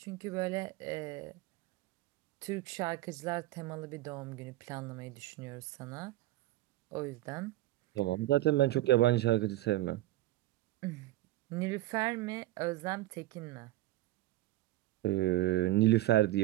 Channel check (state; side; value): quieter; left; 16.5 dB